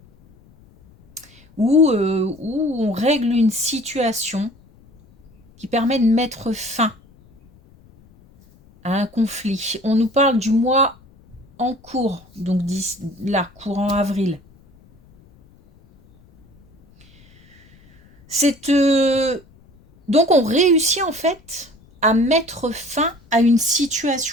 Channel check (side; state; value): left; noise; rumble, 28 dB below the sound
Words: ou on règle une situation qui permet de mettre fin à un conflit. On nous parle du mois en cours, donc là, courant avril. Donc on réussit en fait à mettre fin à une